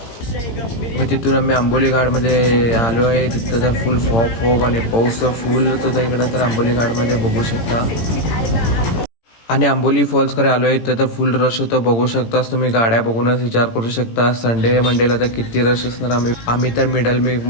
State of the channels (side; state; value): right; late; 18 ms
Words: मग तिथून आम्ही आंबोली घाटमध्ये आलो आहे. तिथं तर फुल फॉग आणि पाऊस तर फुलच होता इकडं तर आंबोली घाटमध्ये बघू शकता. आणि आंबोली फॉल्सकडे आलो आहे तर फुल रश होतं बघू शकताच तुम्ही. गाड्या बघूनच विचार करू शकता संडे मंडेला तर किती रश असणार. आम्ही तर मिडल